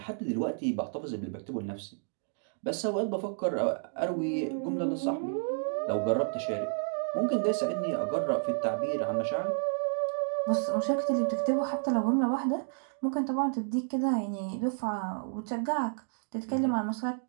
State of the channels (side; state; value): left; silent; digital silence